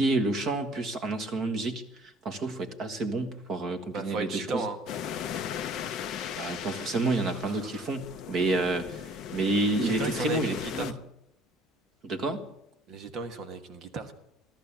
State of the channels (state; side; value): normal; both; correlation 0.55